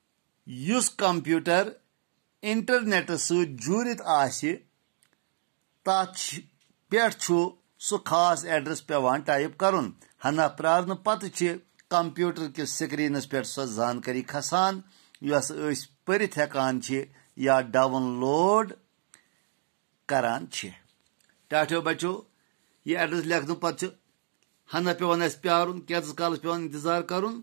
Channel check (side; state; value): left; silent; digital silence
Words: یُس کمپیوٗٹر انٹرنیٹس سۭتۍ جوٗرِتھ آسہِ تتھ پٮ۪ٹھ چھُ سُہ خاص ایڈرس پیوان ٹایپ کرُن ہنا پرارنہٕ پتہٕ چھِ کمپیوٗٹر کِس سکریٖنس پٮ۪ٹھ سۄ زانکٲری کھسان یۄس أسۍ پٔرِتھ ہٮ۪کان چھِ یا ڈاوُن لوڈ کران چھِ ٹاٹھیو بچو یہِ ایڈرس لیکھنہٕ پتہٕ چھِ ہنا پیوان اسہِ پیارُن کینٛژس کالس پیوان انتظار کرُن